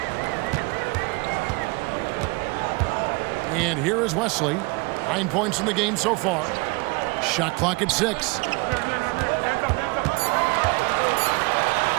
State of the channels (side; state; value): left; quieter; 27.0 dB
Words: And here is Wesley. 9 points in the game so far. Shot clock at 6.